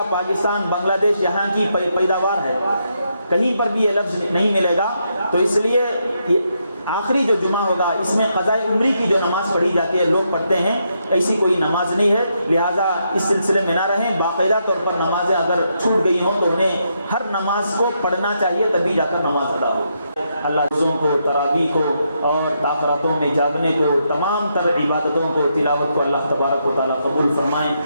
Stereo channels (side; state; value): both; inverted; correlation -0.79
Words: پاکستان، بنگلہ دیش یہاں کی پیداوار ہے، کہیں پر بھی یہ لفظ نہیں ملے گا. تو اس لیے آخری جو جمعہ ہوگا اس میں قضائے عمری کی جو نماز پڑھی جاتی ہے لوگ پڑھتے ہیں، ایسی کوئی نماز نہیں ہے. لہٰذا اس سلسلے میں نہ رہیں. باقاعدہ طور پر نمازیں اگر چھوٹ گئی ہوں تو انہیں ہر نماز کو پڑھنا چاہیے، تبھی جا کر نماز ادا ہو. اللہ روزوں کو، تراویح کو اور تاخراتوں میں جاگنے کو، تمام تر عبادتوں کو، تلاوت کو اللہ تبارک و تعالیٰ قبول فرمائیں.